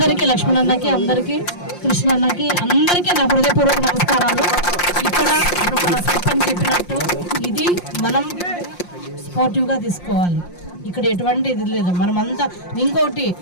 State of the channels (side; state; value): right; late; 5.7 ms